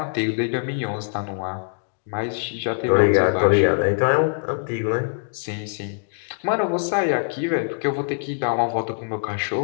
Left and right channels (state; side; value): silent; right; digital silence